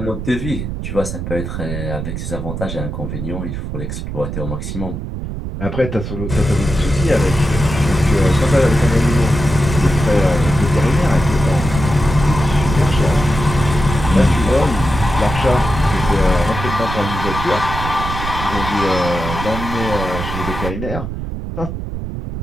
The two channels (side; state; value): right; noise; rumble, 6 dB below the sound